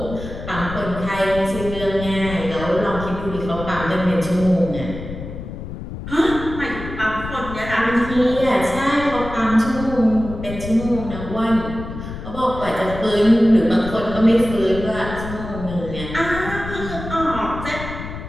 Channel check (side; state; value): left; noise; rumble, 9 dB below the sound